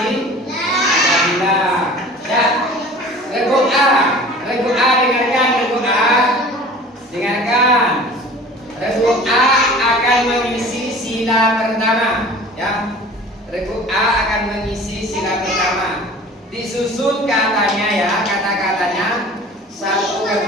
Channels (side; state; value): both; normal; correlation 0.43